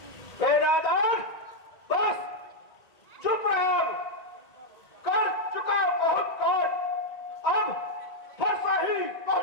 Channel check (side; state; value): right; late; 1.9 ms